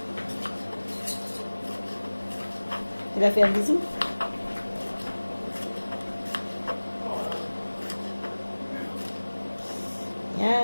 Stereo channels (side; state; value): both; inverted; correlation -1.00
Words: Il a fait un bisou?